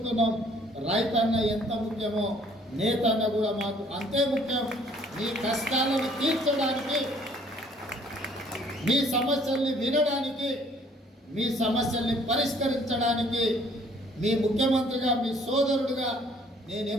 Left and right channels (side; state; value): both; normal; correlation 0.59